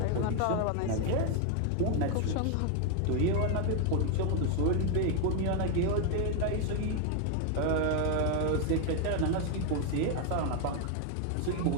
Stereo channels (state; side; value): different; both; correlation 0.01